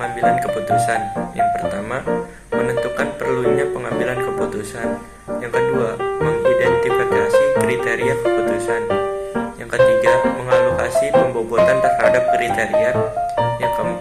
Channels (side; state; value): both; identical; correlation 1.00